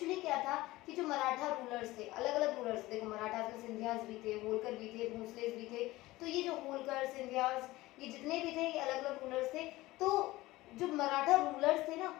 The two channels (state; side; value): quieter; right; 18.6 dB